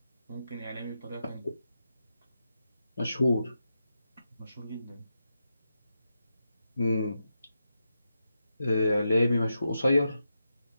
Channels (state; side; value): inverted; both; correlation -0.87